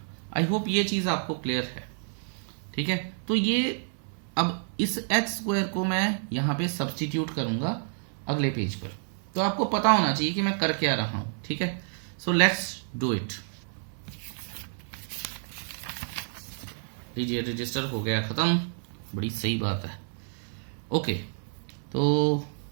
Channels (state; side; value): silent; left; 56 dB below the other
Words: आई होप ये चीज़ आपको क्लियर है। ठीक है, तो ये अब इस एच स्क्वायर को मैं यहाँ पे सब्सटीट्यूट करूँगा अगले पेज पर, तो आपको पता होना चाहिए कि मैं कर क्या रहा हूँ। ठीक है, सो लेट्स डू इट। लीजिए, रजिस्टर हो गया ख़त्म, बड़ी सही बात है। ओके, तो